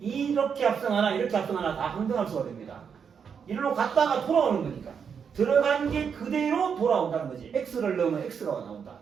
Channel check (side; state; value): left; quieter; 6.8 dB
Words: 합성하나 이렇게 합성하나 다 항등함수가 됩니다. 이리로 갔다가 돌아오는 거니까 들어간 게 그대로 돌아온다는 거지. X를 넣으면 X가 나온다.